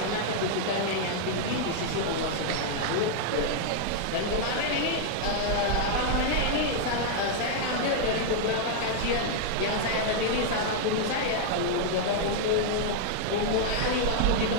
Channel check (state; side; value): different; both; correlation -0.01